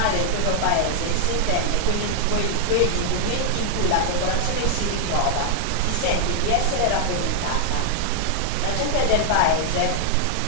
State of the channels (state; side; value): different; both; correlation -0.01